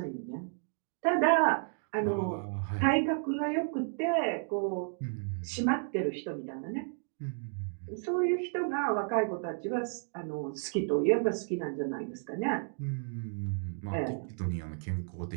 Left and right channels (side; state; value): left; silent; 56 dB below the other